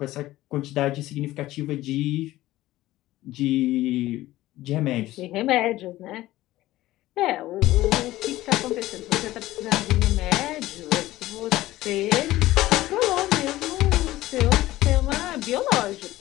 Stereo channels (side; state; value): right; quieter; 16.3 dB